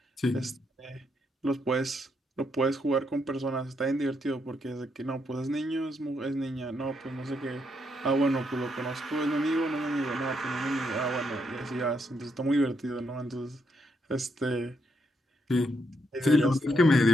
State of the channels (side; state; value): both; normal; correlation 0.77